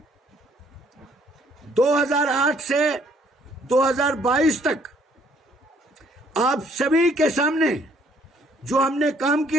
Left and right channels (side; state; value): both; normal; correlation 0.63